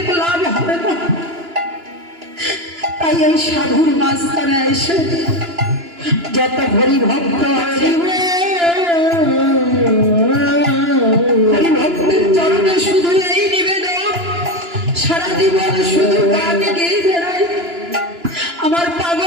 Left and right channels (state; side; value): late; left; 2.9 ms